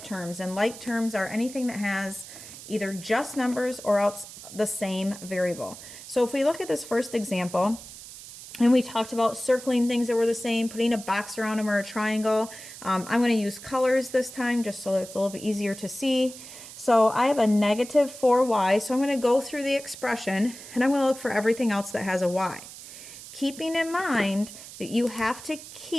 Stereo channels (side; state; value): right; noise; hiss, 15 dB below the sound